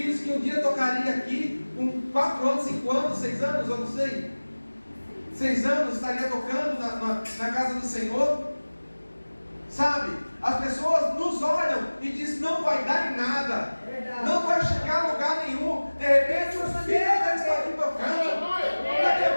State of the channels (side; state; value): both; inverted; correlation -1.00